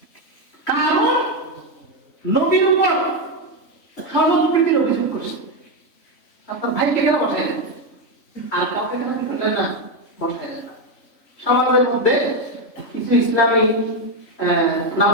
কারণ নবীর উপর সম্প্রীতির অভিযোগ করছে, আপনার ভাইকে কেন বসেন আর কাউকে কেন বললেন না, বসায় না। সমাজের মধ্যে কিছু ইসলামী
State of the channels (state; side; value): late; right; 3.6 ms